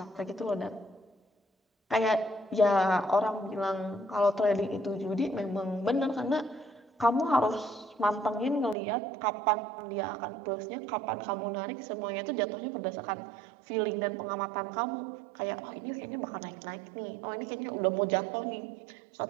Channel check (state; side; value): drops out; left; at 8.8 s